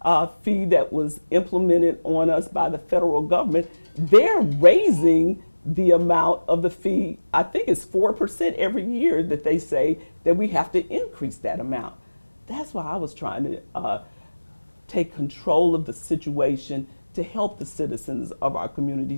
fee that was implemented on us by the federal government, they're raising the amount of the fee. I think it's 4% every year that they say that we have to increase that amount. That's why I was trying to take control of the situation to help the citizens of our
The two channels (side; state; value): both; inverted; correlation -1.00